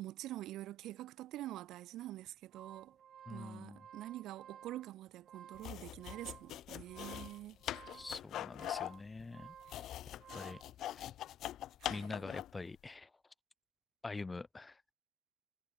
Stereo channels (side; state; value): both; normal; correlation 0.56